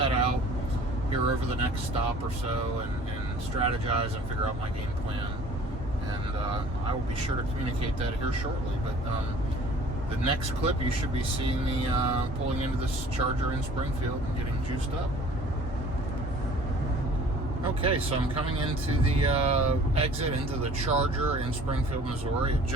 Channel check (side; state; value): both; normal; correlation 0.50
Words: out here over the next stop or so and strategize and figure out my game plan. And I will be sure to communicate that here shortly. But the next clip, you should be seeing me pulling into this charger in Springfield and getting juiced up. Okay, so I'm coming into the exit into the charger in Springfield, Missouri. It